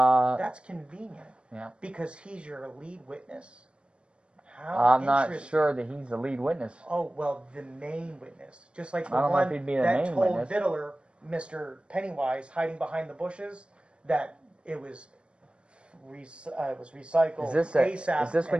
convenient. Yeah. Because he's your lead witness. How I'm not interesting. sure that he's the lead witness. Oh, well, the main witness. Just like the I don't know one if he'd be the that main told witness. Vittler, Mr. Pennywise, hiding behind the bushes, that it was recycled ASAP. Is this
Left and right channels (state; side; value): late; left; 0.057 ms